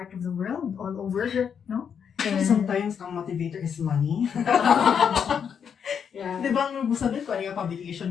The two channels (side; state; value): right; quieter; 7.4 dB